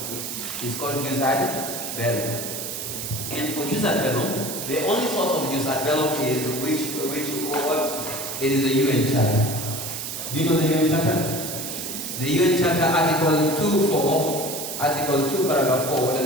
It's called jus ad bellum. And for jus ad bellum, the only source of jus ad bellum is what? It is the UN Charter. Do you know the UN Charter? The UN Charter, Article 2, Paragraph 4, what does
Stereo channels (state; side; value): noise; right; hiss, 6 dB below the sound